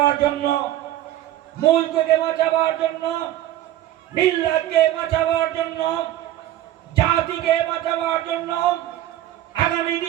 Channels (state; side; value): quieter; left; 13.3 dB